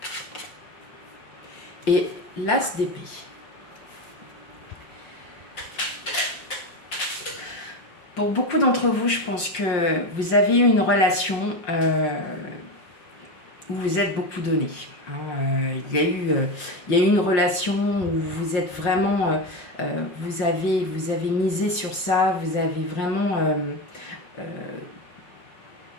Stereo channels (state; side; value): late; right; 5.6 ms